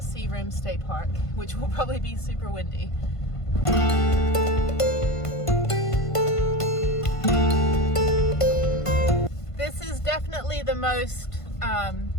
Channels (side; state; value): right; late; 1.5 ms